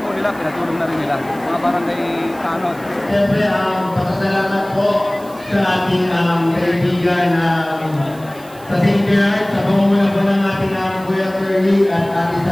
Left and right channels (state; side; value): noise; right; hiss, 23 dB below the sound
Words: nila, pinatulong na rin nila, mga barangay tanod. Siyempre, pasasalamat po sa ating kaibigan sa St. Bernard, sa pamumuno po ng ating Kuya Curly at Ate